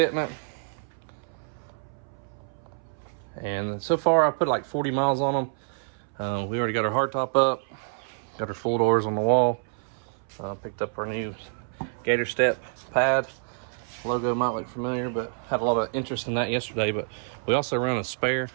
And so far, I put like 40 miles on them. We already got our hardtop up, got our full doors on the wall. Picked up our new Gator Step pad. Logo might look familiar, but had a lot of interest in that yesterday. But we also run a spare.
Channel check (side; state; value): left; silent; 60 dB below the other